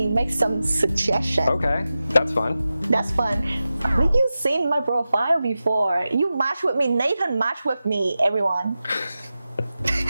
make some suggestions. Okay, that's fun. That's fun. Have you seen my profile before? You match with me. Nathan match with me, everyone.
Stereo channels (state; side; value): inverted; both; correlation -0.94